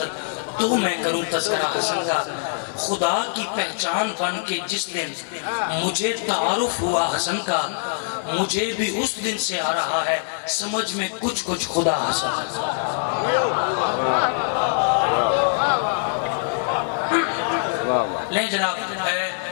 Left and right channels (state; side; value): silent; right; 58 dB below the other